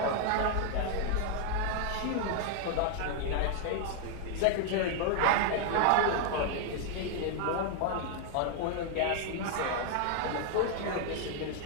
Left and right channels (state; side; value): different; both; correlation 0.00